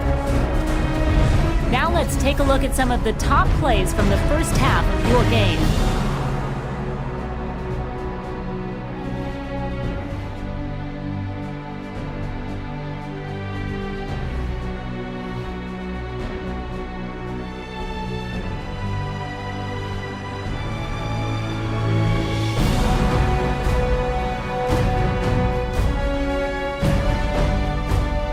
Now let's take a look at some of the top plays from the first half of your game.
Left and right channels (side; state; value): both; identical; correlation 1.00